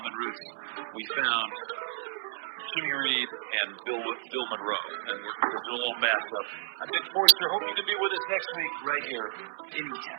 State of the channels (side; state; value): left; silent; 56 dB below the other